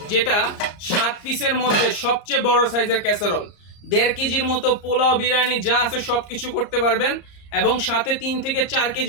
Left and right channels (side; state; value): right; late; 34 ms